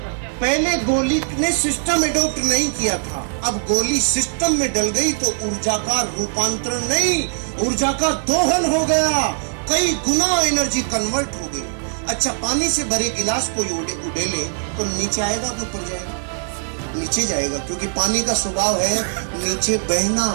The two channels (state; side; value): silent; left; 65 dB below the other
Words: पहले गोली ने सिस्टम एडॉप्ट नहीं किया था, अब गोली सिस्टम में डल गई तो ऊर्जा का रूपांतरण नहीं, ऊर्जा का दोहन हो गया। कई गुना एनर्जी कन्वर्ट हो गई। अच्छा, पानी से भरे गिलास को उड़ेले तो नीचे आएगा कि ऊपर जाएगा? नीचे जाएगा, क्योंकि पानी का स्वभाव है नीचे बहना।